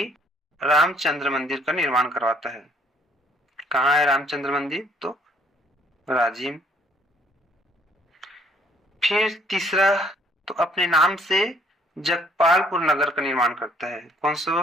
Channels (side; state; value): both; normal; correlation 0.63